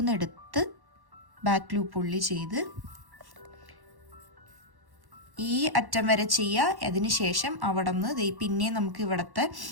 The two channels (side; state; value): left; late; 1.1 ms